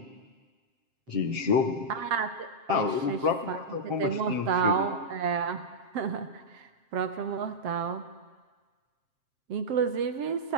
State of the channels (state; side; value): late; left; 7.5 ms